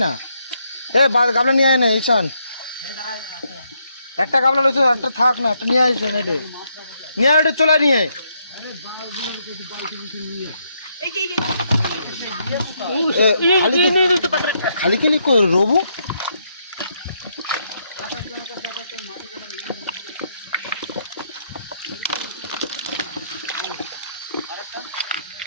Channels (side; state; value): both; inverted; correlation -0.76